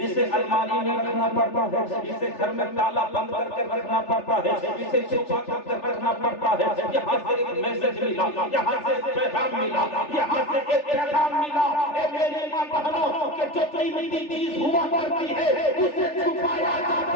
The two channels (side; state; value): right; late; 3.4 ms